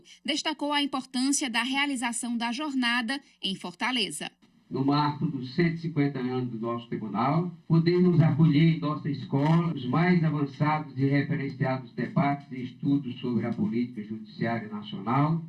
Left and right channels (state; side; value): identical; both; correlation 1.00